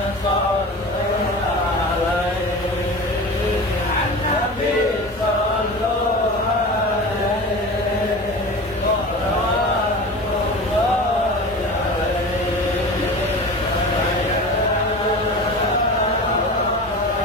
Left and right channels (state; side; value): normal; both; correlation 0.33